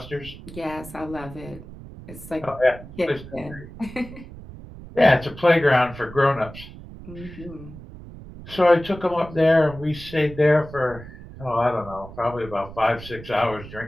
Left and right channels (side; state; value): right; noise; rumble, 15 dB below the sound